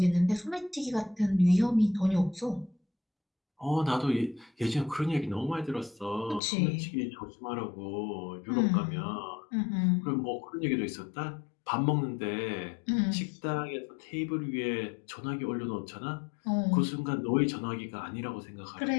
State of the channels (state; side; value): drops out; right; at 6.4 s